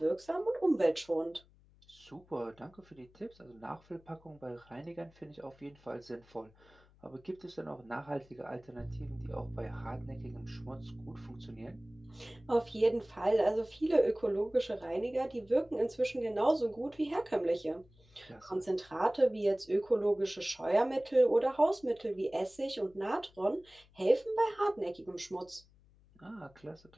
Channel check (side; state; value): left; noise; hum, 28 dB below the sound